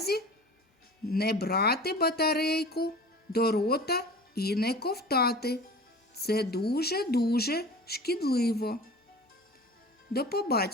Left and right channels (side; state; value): both; normal; correlation 0.39